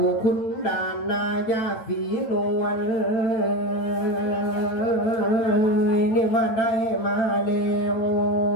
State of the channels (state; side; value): late; right; 9.0 ms